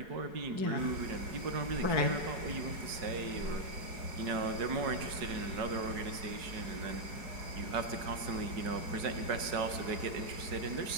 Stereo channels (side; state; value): left; late; 4.8 ms